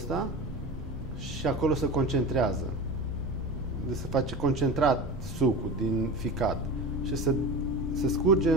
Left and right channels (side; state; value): right; noise; rumble, 11 dB below the sound